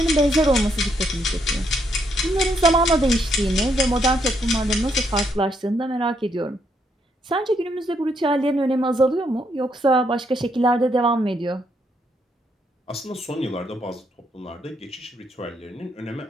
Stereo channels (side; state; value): both; normal; correlation 0.75